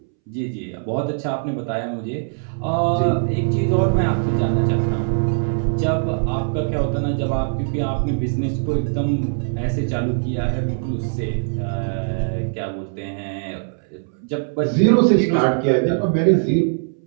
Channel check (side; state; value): left; silent; 65 dB below the other